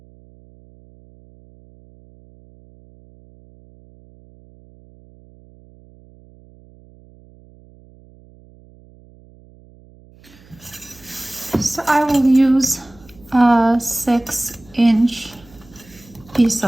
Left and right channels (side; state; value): right; noise; hum, 26 dB below the sound